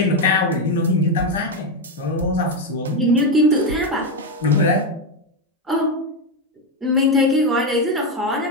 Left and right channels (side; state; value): both; normal; correlation 0.08